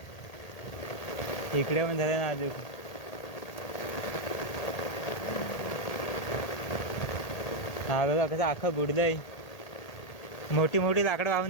इकडे पण झालं ना अजून. हा बघा कसं अख्खं बुडलंय. मोठी मोठी लाकडं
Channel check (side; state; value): right; late; 1.8 ms